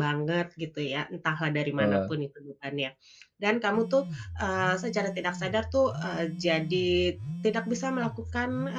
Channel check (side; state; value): both; identical; correlation 1.00